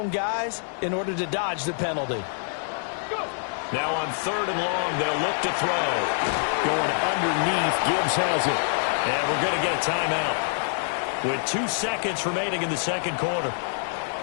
guys in order to dodge the penalty. Now on third and long, they'll look to throw. Going underneath, Gibbs has it. And we're going to get a timeout with 2 seconds remaining in the second quarter.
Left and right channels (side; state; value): right; silent; digital silence